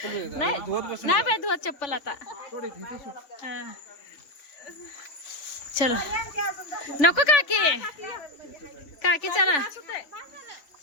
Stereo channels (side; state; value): right; late; 3.5 ms